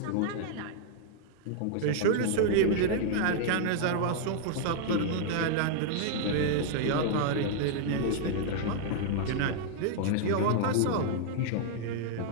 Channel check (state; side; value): different; both; correlation -0.01